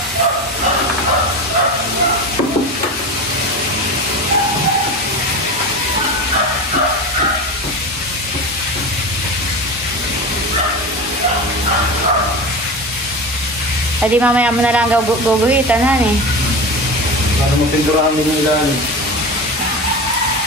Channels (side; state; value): both; normal; correlation 0.27